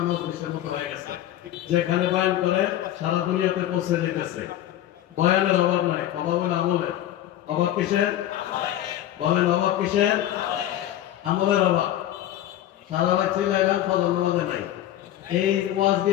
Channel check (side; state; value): right; quieter; 12.8 dB